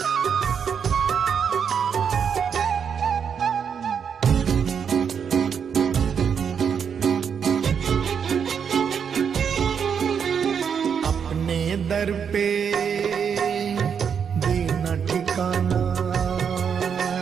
अपने दर पे देना ठिकाना।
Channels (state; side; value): quieter; left; 7.2 dB